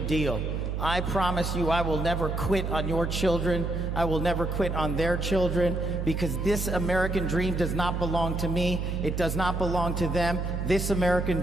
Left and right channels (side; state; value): right; noise; hum, 2 dB below the sound